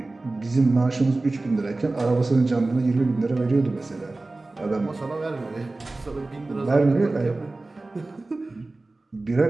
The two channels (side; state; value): left; quieter; 3.1 dB